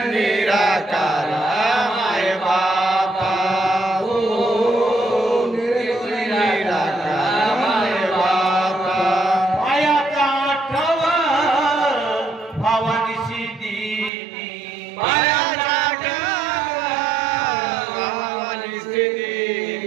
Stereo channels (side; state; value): left; drops out; at 14.1 s